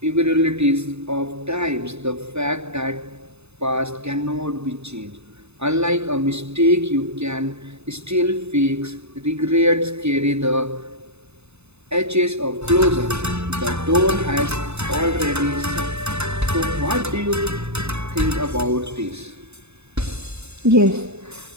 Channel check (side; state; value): left; late; 0.80 ms